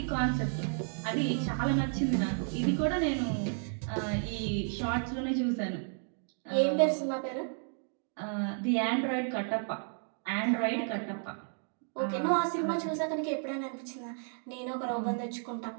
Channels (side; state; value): left; silent; 56 dB below the other